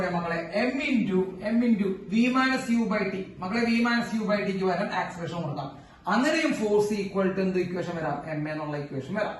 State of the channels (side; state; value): both; identical; correlation 1.00